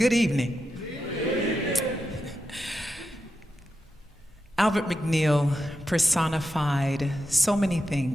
evening. Albert McNeil personified so many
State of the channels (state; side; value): normal; both; correlation 0.88